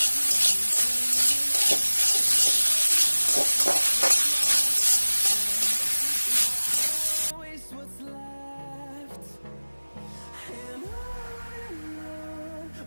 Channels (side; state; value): both; inverted; correlation -1.00